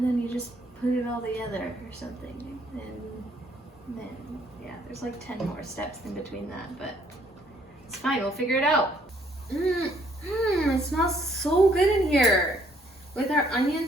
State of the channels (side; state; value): both; normal; correlation 0.65